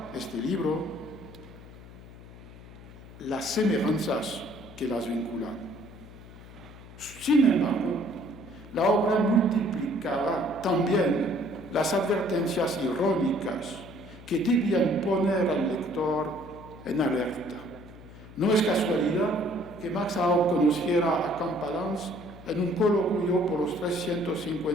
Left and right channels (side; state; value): left; noise; hum, 18 dB below the sound